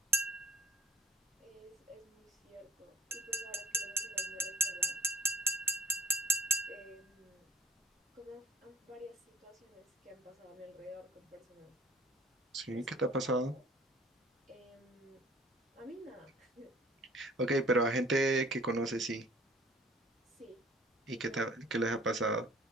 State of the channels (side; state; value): both; normal; correlation 0.54